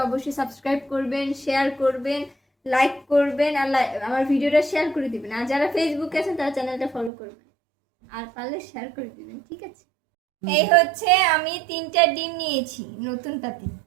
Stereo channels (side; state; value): left; drops out; at 7.1 s